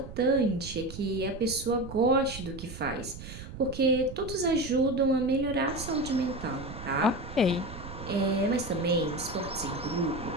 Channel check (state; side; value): noise; right; rumble, 12 dB below the sound